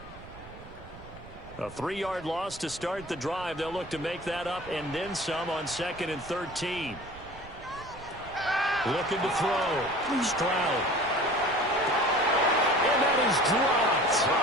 A 3-yard loss to start the drive. They'll look to make that up and then some on 2nd and 13. Looking to throw. Stroud. And that is dropped.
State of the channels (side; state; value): right; noise; rumble, 17 dB below the sound